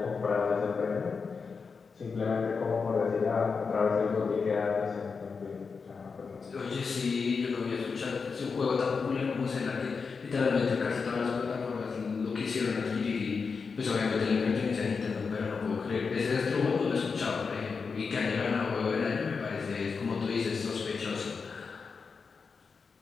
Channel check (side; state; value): right; quieter; 5.1 dB